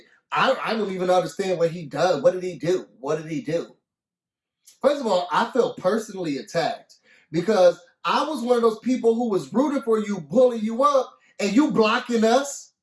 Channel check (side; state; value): both; identical; correlation 1.00